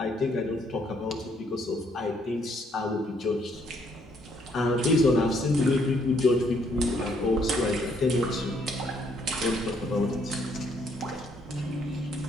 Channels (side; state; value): both; normal; correlation 0.69